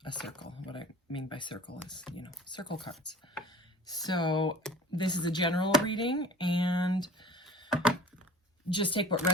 a circle. What I mean by circle is, circle cards. So this is a general reading, and just take what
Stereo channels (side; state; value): both; normal; correlation 0.43